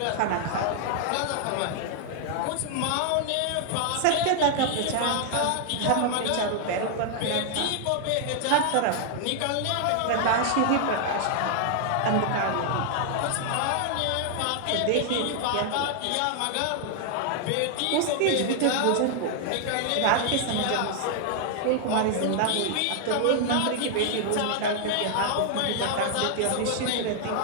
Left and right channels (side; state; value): both; different; correlation 0.00